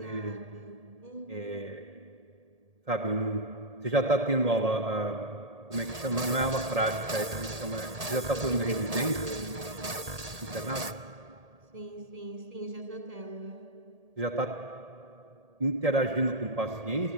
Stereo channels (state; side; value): late; left; 1.8 ms